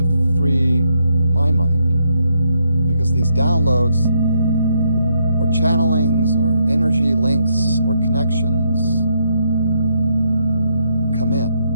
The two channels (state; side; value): inverted; both; correlation -0.75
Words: free my mind, because these downloads or channelings or energy links or connections come in,